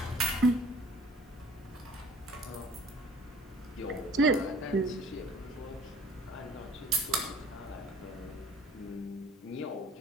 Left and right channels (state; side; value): normal; both; correlation 0.50